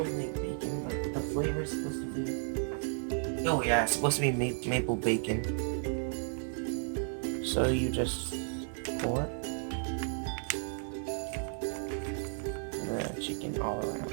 like bacon, but the flavor is supposed to be... Oh yeah, it's supposed to be maple bacon. So you just pour the chicken all around.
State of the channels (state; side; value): silent; left; 55 dB below the other